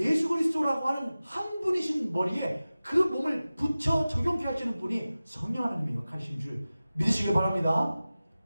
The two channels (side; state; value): both; inverted; correlation -0.96